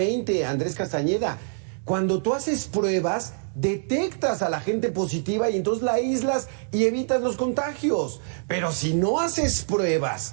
Andrés Castañeda. Cuando tú haces pruebas, detectas a la gente positiva y entonces la aíslas y evitas los contagios. Pero si no haces pruebas,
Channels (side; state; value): left; silent; digital silence